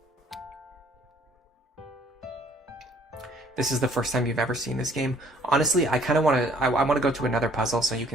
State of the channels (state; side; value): normal; both; correlation 0.59